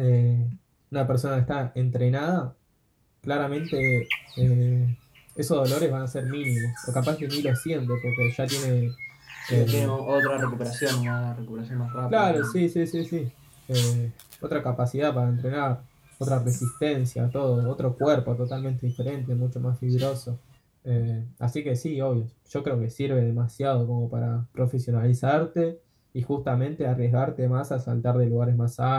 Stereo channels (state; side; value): identical; both; correlation 1.00